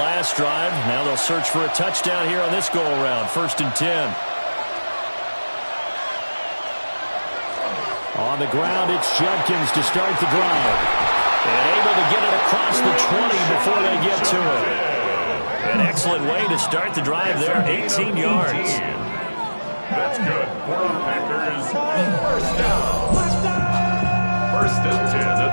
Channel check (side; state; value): both; inverted; correlation -1.00